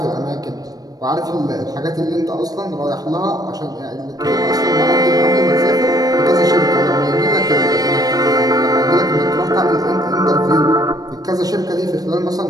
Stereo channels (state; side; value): late; left; 0.18 ms